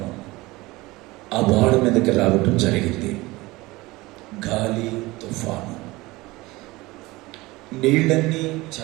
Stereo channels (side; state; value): left; quieter; 20.9 dB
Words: ఆ వాడ మీదకి రావటం జరిగింది. గాలి, తుఫాను, నీళ్ళన్నీ